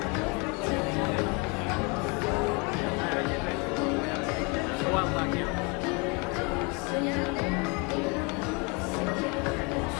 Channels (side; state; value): right; quieter; 30.8 dB